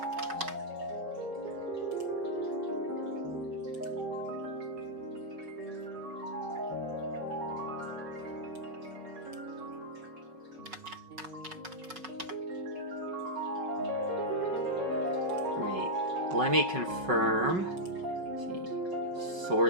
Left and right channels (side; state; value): left; late; 5.4 ms